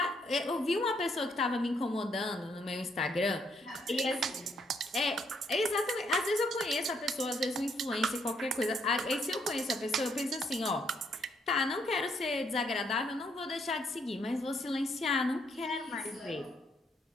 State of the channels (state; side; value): normal; both; correlation 0.72